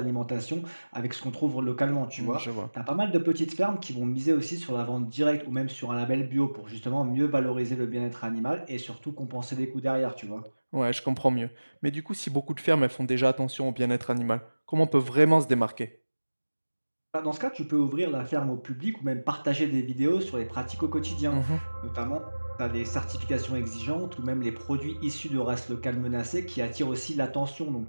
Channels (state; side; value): inverted; both; correlation -1.00